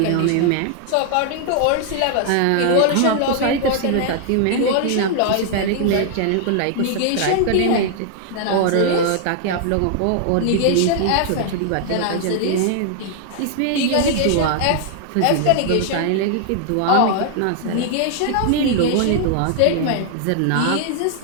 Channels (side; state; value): both; different; correlation -0.01